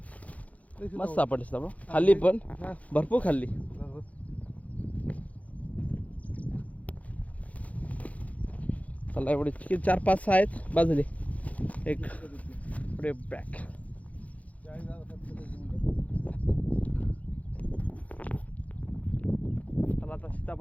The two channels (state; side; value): late; right; 0.069 ms